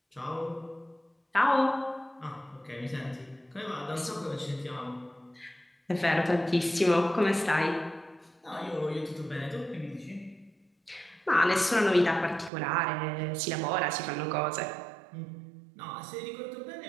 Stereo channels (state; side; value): drops out; left; at 12.5 s